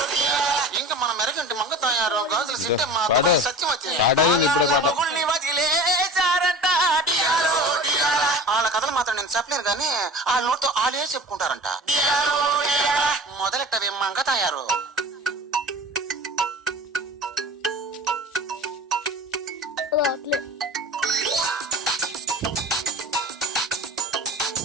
ఇంకా మన మెరగంటి మంగ తయారు గాజులు సిట్టమ్మ దుబాయ్ సత్యవతి మొగుల్ని వదిలేశారంట. వాళ్ళ కథలు మాత్రం నేను చెప్పలేను కానీ వాళ్ళ నోటితో వాళ్ళే చెప్పుకుంటారంట. మొదలెట్టవే మంగ తయారు.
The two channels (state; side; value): normal; both; correlation 0.37